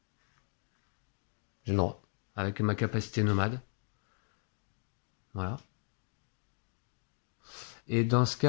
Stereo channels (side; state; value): right; silent; 54 dB below the other